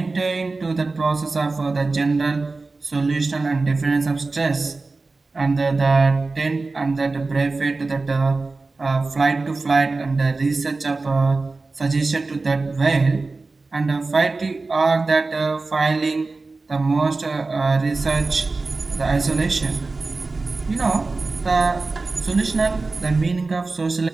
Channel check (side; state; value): left; quieter; 3.7 dB